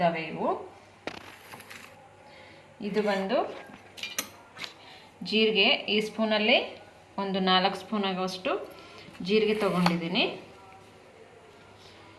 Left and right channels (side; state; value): both; identical; correlation 1.00